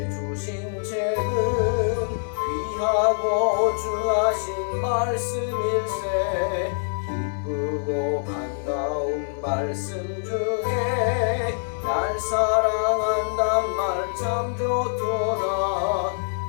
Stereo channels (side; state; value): right; silent; digital silence